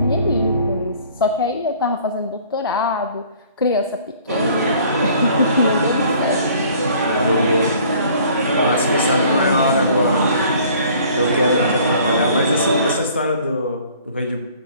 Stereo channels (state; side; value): inverted; both; correlation -0.54